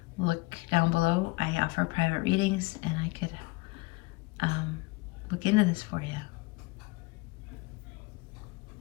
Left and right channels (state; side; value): quieter; right; 22.7 dB